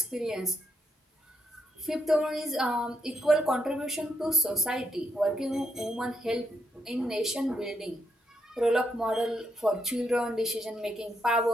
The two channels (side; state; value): both; normal; correlation 0.79